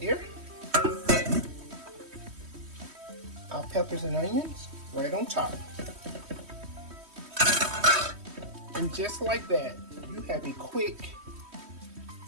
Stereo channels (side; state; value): left; late; 3.1 ms